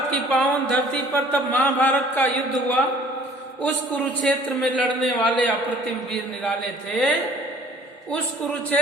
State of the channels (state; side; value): normal; both; correlation 0.53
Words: की पावन धरती पर तब महाभारत का युद्ध हुआ। उस कुरुक्षेत्र में लड़ने वाले अप्रतिम वीर निराले थे, उस